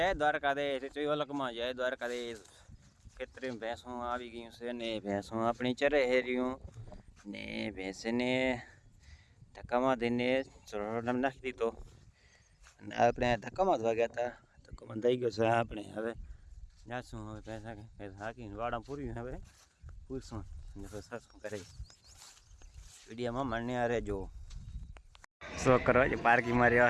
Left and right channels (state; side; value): identical; both; correlation 1.00